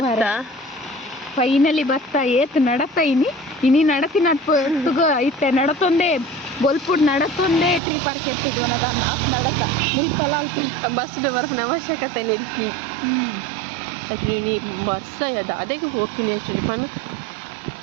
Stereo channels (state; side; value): drops out; left; at 7.8 s